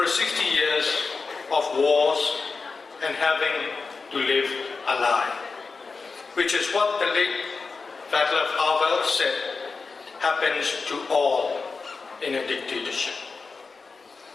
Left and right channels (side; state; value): right; quieter; 4.4 dB